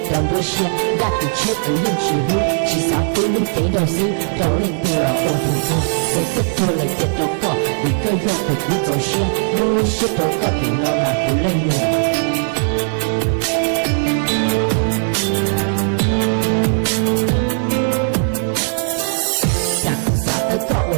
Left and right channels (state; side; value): silent; left; digital silence